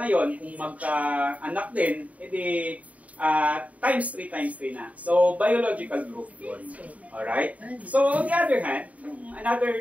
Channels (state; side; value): late; left; 0.069 ms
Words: yon, kung magka-anak din, times 3 na. So, biological growth yun. Alright? So, on the other hand, another